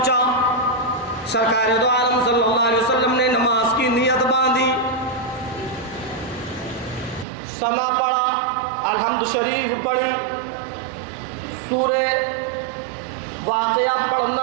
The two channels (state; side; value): drops out; left; at 7.2 s